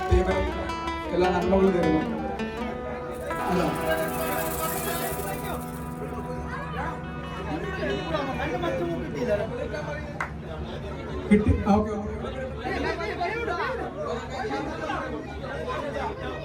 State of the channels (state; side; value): identical; both; correlation 1.00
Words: ടീമിനും എല്ലാ നന്മകളും തരുന്നു. അല്ല കിട്ടി. ഓക്കെ